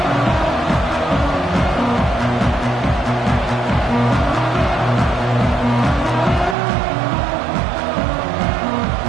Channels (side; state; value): left; drops out; at 6.6 s